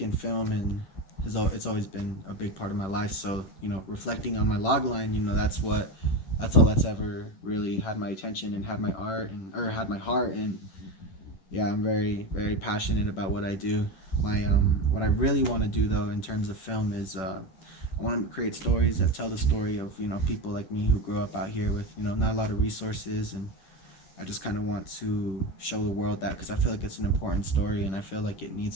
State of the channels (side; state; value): right; late; 10 ms